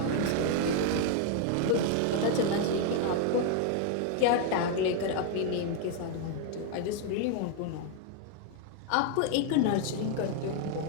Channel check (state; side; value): different; both; correlation 0.00